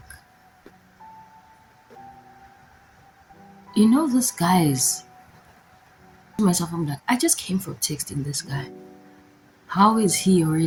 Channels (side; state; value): both; identical; correlation 1.00